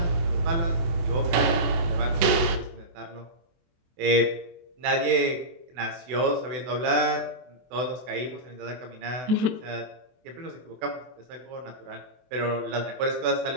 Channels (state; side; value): late; left; 24 ms